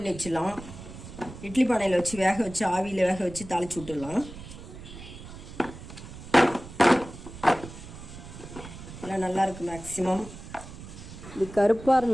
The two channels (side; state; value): right; noise; rumble, 14 dB below the sound